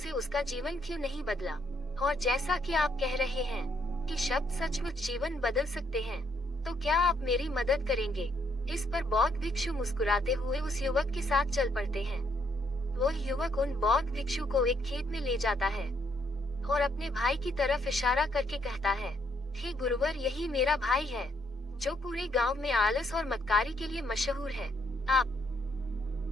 उसका जीवन क्यों नहीं बदला? और जैसा कि आप कह रहे हैं कि शब्द सचमुच जीवन बदल सकते हैं, तो क्या आप मेरी मदद करेंगे? इस पर बौद्ध भिक्षु मुस्कुराते हुए उस युवक के साथ चल पड़ते हैं। वो युवक उन बौद्ध भिक्षु को एक खेत में ले जाता है और अपने भाई की तरफ इशारा करके कहता है, हे गुरुवर, यही मेरा भाई है जो पूरे गांव में आलस और मक्कारी के लिए मशहूर है। आप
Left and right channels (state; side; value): normal; both; correlation 0.72